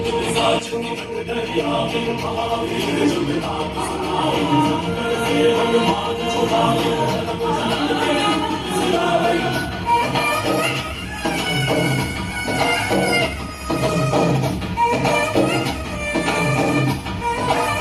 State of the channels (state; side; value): identical; both; correlation 1.00